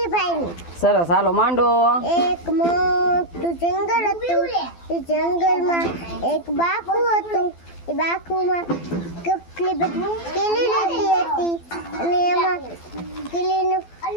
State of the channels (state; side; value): late; right; 12 ms